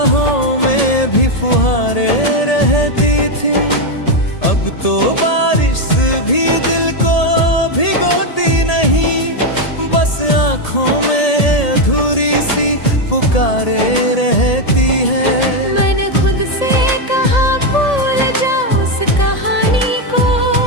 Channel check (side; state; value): right; late; 1.8 ms